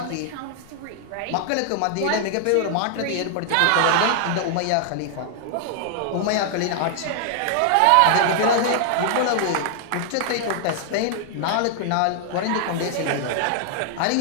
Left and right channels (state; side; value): different; both; correlation 0.00